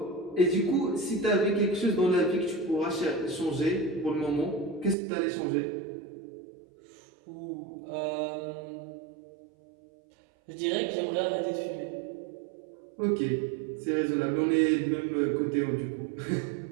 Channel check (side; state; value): left; drops out; at 5.0 s